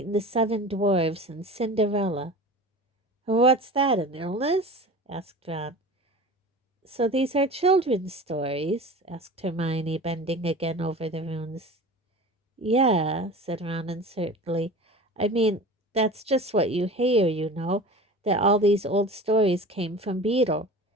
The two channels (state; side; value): normal; both; correlation 0.36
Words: and the Seven Dwarfs and Cinderella. What's that, an illness? Asked Ron. So these are children's stories? Asked Hermione, bending again over the runes. Yeah, said Ron uncertainly. I mean, that's just what you hear, you know, that all these old stories came from Beetle.